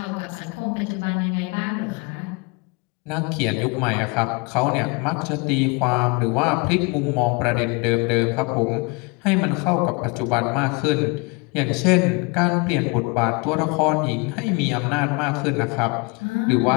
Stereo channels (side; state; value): right; quieter; 29.7 dB